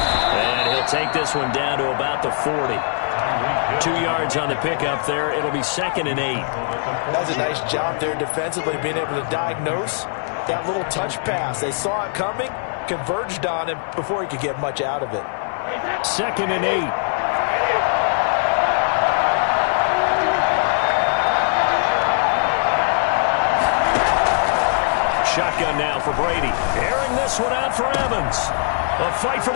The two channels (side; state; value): right; silent; 63 dB below the other